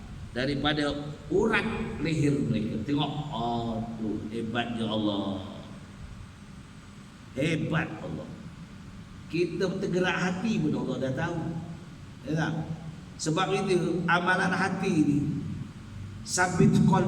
daripada urat leher mereka. Tengok, tu hebatnya Allah. Hebat Allah. Kita tergerak hati pun Allah dah tahu, ya tak? Sebab itu amalan hati ni, sabit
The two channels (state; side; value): identical; both; correlation 1.00